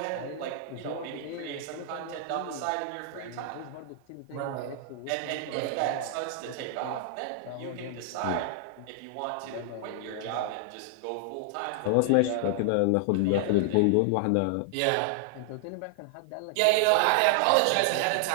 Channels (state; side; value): different; both; correlation -0.01